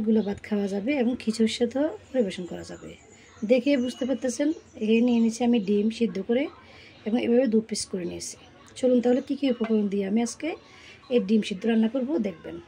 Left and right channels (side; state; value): both; identical; correlation 1.00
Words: ভাত খাওয়া যাবে এবং খিচুড়ির সাথেও পরিবেশন করা যাবে। দেখে বুঝতে পারতেছেন, এখানে নিয়ে নিয়েছি আমি ডিম সিদ্ধ করে এবং এভাবে 2 পিস করে নিয়েছি। চলুন তাহলে কী কী উপকরণ দিয়ে আমি আজকে এই ডিম সিদ্ধ রান্না করব দেখবেন।